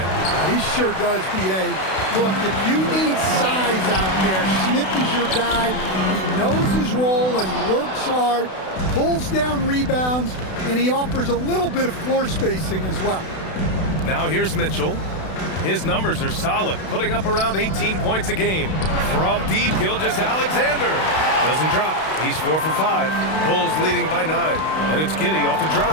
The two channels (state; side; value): late; right; 32 ms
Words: He sure does, B.A. Look, if you need size out there, Smith is your guy. He knows his role and he works hard, pulls down rebounds, and he offers a little bit of floor spacing as well. Now here's Mitchell. His numbers are solid, putting up around 18 points a game. From deep, Gilgeous-Alexander doesn't drop. He's 4 for 5. Bulls leading by 9. And it's Giddey off the